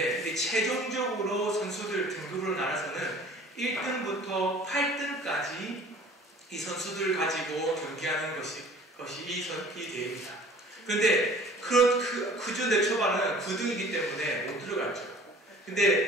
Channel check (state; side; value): normal; both; correlation 0.48